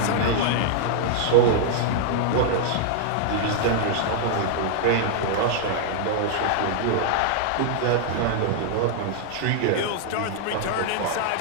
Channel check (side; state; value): both; different; correlation -0.01